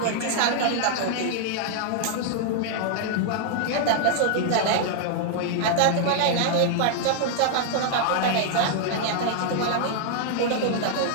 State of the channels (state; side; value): different; both; correlation -0.01